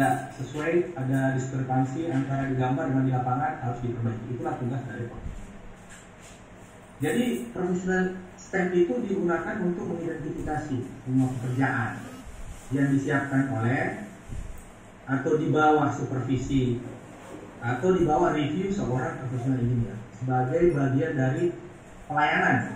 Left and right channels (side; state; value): both; identical; correlation 1.00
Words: sesuai, ada diskrepansi antara di gambar dengan di lapangan, harus diperbaiki. Itulah tugas dari profesional. Jadi profesional stamp itu digunakan untuk mengidentifikasi semua pekerjaan yang disiapkan oleh atau di bawah supervisi atau di bawah review seorang profesional engineer sebagai bagian dari